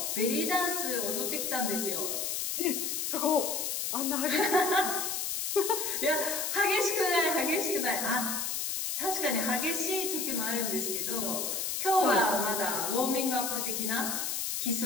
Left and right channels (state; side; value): noise; left; hiss, 1 dB below the sound